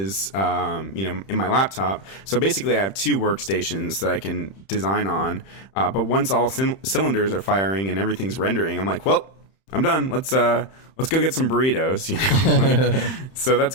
in my laptop. So basically I have two workstations that I can design on. But once all cylinders are firing and everything's rendering, I'm like, well, I'm done. Let's go get some burritos. So that's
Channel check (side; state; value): right; late; 31 ms